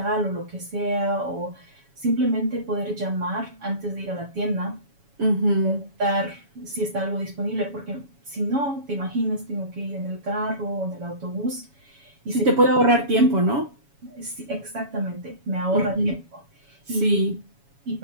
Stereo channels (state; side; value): late; left; 7.2 ms